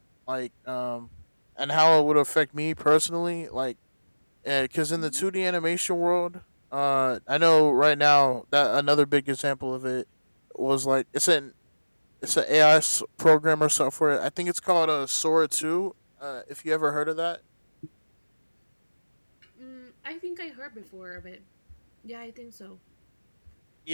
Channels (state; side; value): inverted; both; correlation -1.00